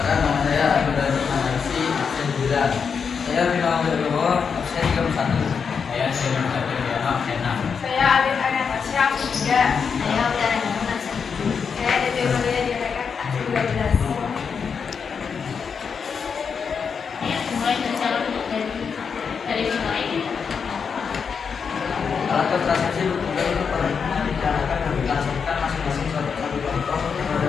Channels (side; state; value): right; quieter; 6.1 dB